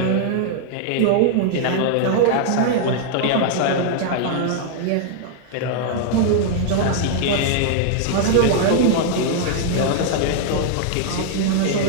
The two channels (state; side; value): different; both; correlation -0.01